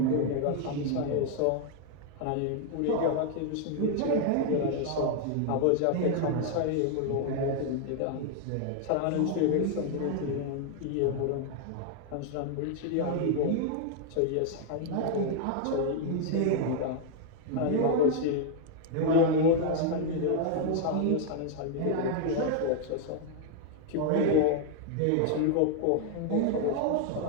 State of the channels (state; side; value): different; both; correlation 0.00